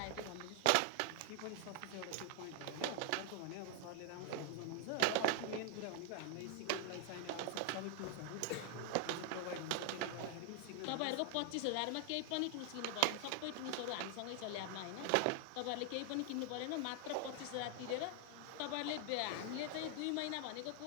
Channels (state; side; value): different; both; correlation 0.00